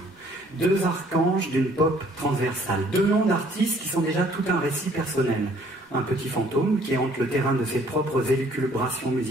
deux archanges d'une pop transversale, deux noms d'artistes qui sont déjà tout un récit personnel. Un petit fantôme qui hante le terrain de ses propres élucubrations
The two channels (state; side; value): normal; both; correlation 0.60